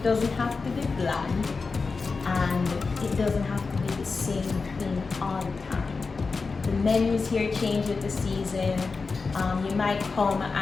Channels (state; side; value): quieter; right; 4.4 dB